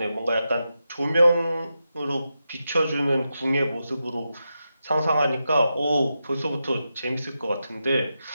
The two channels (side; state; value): both; inverted; correlation -0.88